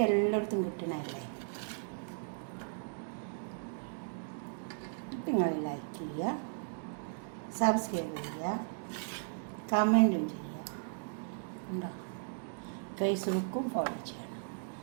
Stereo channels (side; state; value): left; silent; digital silence